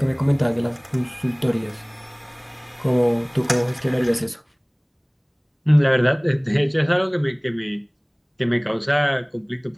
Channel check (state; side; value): identical; both; correlation 1.00